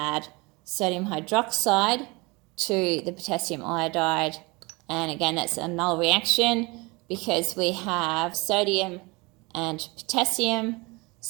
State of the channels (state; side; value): quieter; left; 25.8 dB